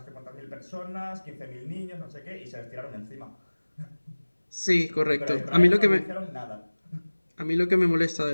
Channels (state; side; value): inverted; both; correlation -1.00